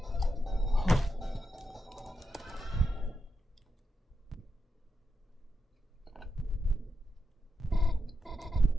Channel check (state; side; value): normal; both; correlation 0.86